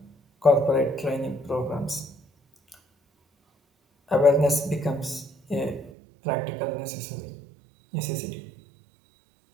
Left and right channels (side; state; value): left; drops out; at 5.9 s